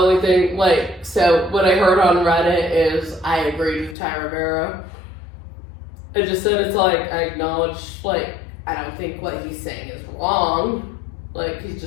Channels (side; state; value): right; drops out; at 4.0 s